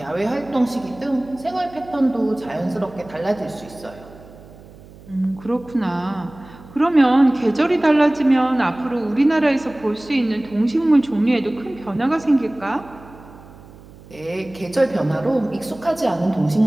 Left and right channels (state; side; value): noise; right; hum, 21 dB below the sound